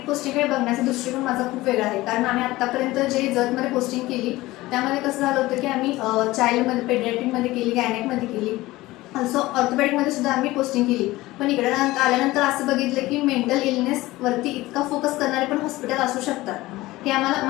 पोस्टिंगकडे बघण्याचा दृष्टिकोन माझा खूप वेगळा आहे, कारण आम्ही आत्तापर्यंत जे जतमध्ये पोस्टिंग केली त्यामध्ये कसं झालं होतं की आम्ही चाइल्डमध्ये, पेडियाट्रिकमध्ये केली, गायनेकमध्ये केली, ऑल्सो ऑर्थोपेडिकमध्ये सुद्धा आम्ही पोस्टिंग केली. पण इकडे आल्यानंतर असं बघितलं की मेंटल इलनेसवरती इतका फोकस करणारे पण हॉस्पिटल असू शकतात, हे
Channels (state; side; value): quieter; right; 18.5 dB